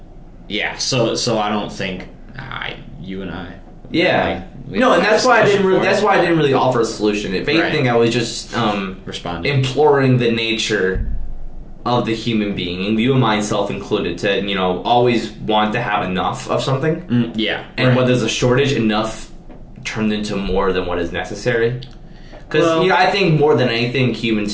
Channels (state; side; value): identical; both; correlation 1.00